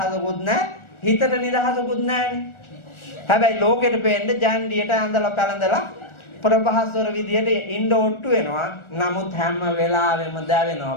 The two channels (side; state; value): right; late; 1.4 ms